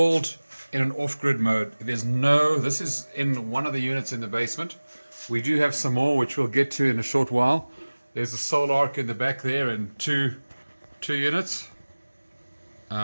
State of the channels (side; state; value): both; inverted; correlation -1.00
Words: in an off-grid mode. This is in one of the units in the basement. We do have some more, which we'll get to in a short while. There's a solar arc in the back there and two units.